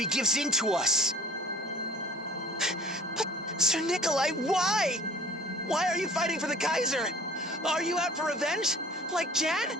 gives in to us. But, Sir Nikolai, why? Why are you fighting for the Kaiser? Are you out for revenge? Like Jan?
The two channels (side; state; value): both; normal; correlation 0.49